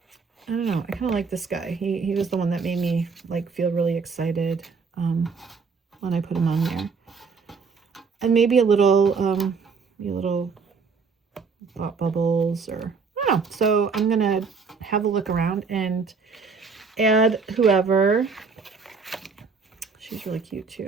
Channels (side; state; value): left; quieter; 5.1 dB